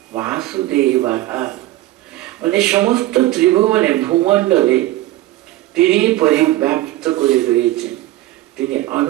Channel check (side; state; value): left; quieter; 16.2 dB